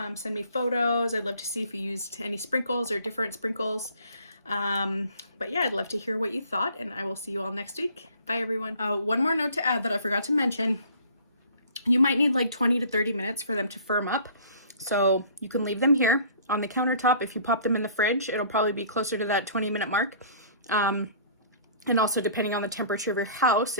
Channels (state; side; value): inverted; both; correlation -0.51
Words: Send me photos. I'd love to see if you used any sprinkles or different sprinkles. But yeah, I'd love to hear what you thought, and I will see you all next week. Bye everyone. One more note to add that I forgot to mention. You might need like 20 to 30 minutes for them to firm up. So you can leave them here on the countertop. If you pop them in the fridge, it'll probably be closer to that 20-minute mark. And also depending on the temperature of your house,